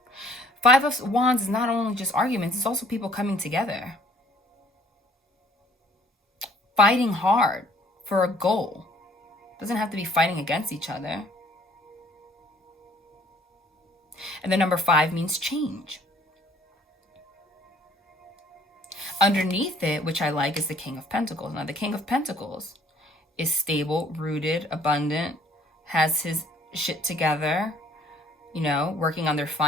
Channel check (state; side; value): normal; both; correlation 0.58